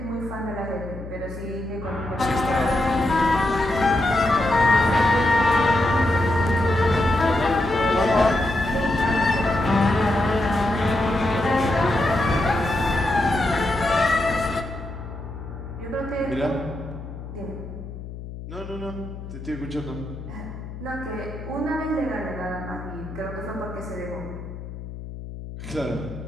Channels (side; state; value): left; noise; hum, 11 dB below the sound